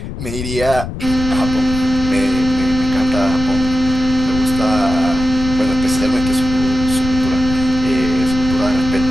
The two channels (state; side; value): noise; left; rumble, 7 dB below the sound